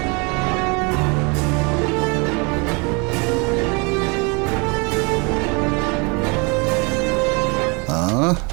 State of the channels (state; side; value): quieter; left; 30.9 dB